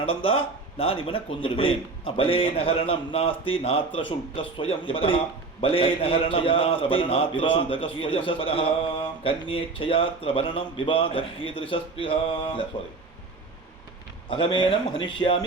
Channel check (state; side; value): quieter; left; 3.9 dB